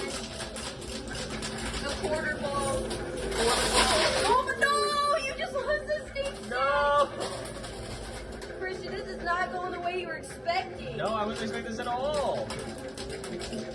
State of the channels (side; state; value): both; identical; correlation 1.00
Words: The quarter ball. Oh no, you just lost the stink. No! Christian, this is not going the way you were expecting. No, I wasn't expecting this at all.